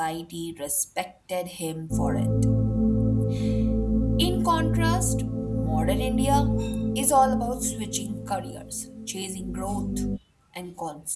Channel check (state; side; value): identical; both; correlation 1.00